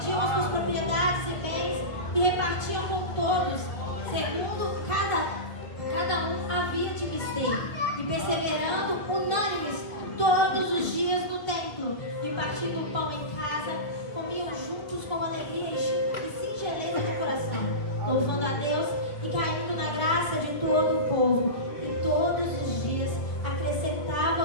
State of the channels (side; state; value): right; late; 1.5 ms